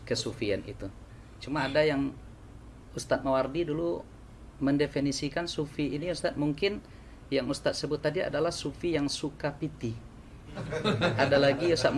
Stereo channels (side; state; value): both; identical; correlation 1.00